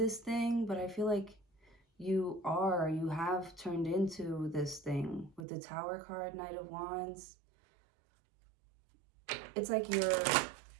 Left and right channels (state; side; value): drops out; left; at 5.4 s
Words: thing, but I feel like you have turned into this thing with the Tower card, Knight of Wands. It's like